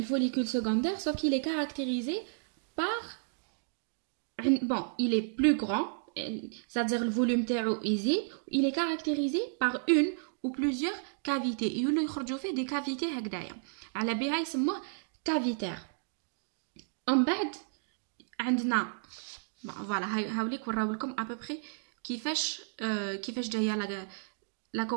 follicule secondaire sauf qu'il est caractérisé par bon il est plus grand c'est-à-dire le volume تاعو يزيد. Il est caractérisé par une ou plusieurs cavités يولوا يخرجوا فيه des cavités هكذايا على بها يسموه cavitaire. ومن بعد عندنا فوالا هاوليك وراو لكم à peu près كيفاش جايه لا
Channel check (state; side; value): silent; left; digital silence